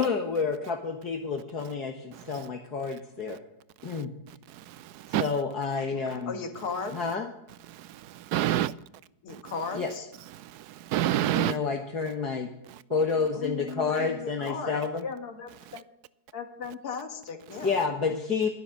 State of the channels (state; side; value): late; left; 4.7 ms